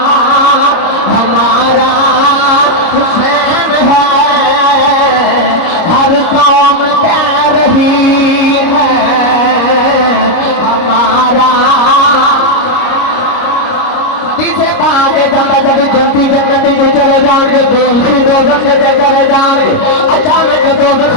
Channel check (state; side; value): late; right; 29 ms